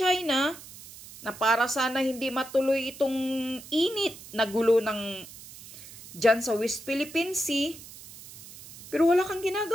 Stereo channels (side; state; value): right; noise; hiss, 17 dB below the sound